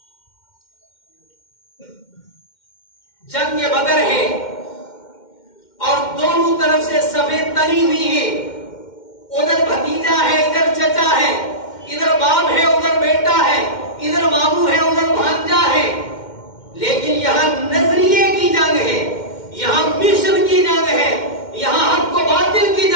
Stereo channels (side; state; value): right; late; 2.1 ms